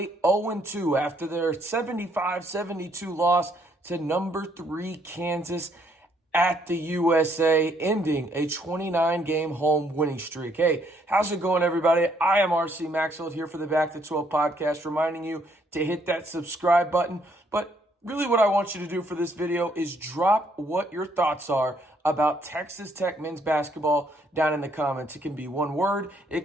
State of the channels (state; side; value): normal; both; correlation 0.69